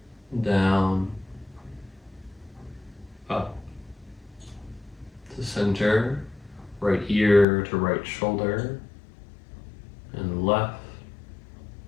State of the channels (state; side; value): drops out; right; at 7.5 s